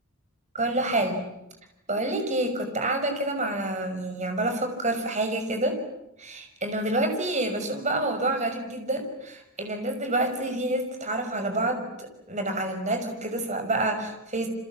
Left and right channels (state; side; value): normal; both; correlation 0.01